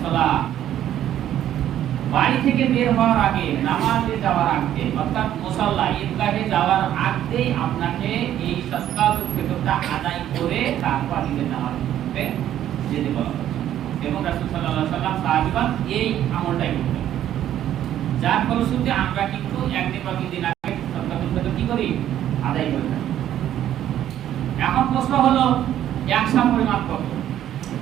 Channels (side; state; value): left; quieter; 11.5 dB